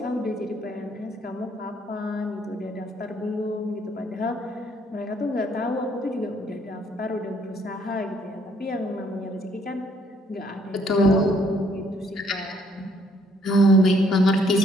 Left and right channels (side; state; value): both; normal; correlation 0.66